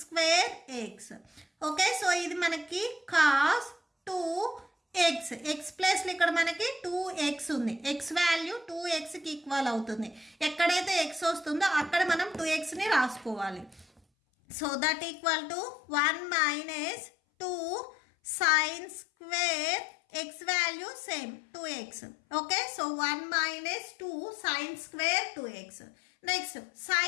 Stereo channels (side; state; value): right; drops out; at 14.0 s